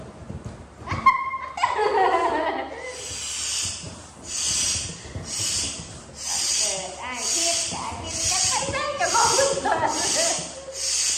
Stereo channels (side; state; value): both; identical; correlation 1.00